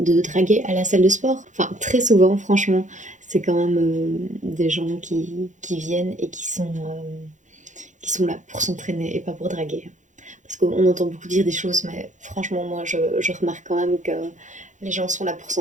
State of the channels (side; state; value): left; late; 0.36 ms